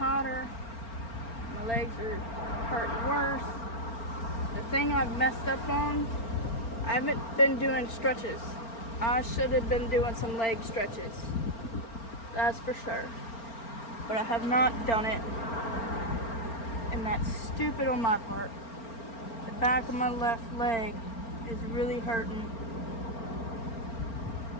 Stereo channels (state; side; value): late; right; 4.4 ms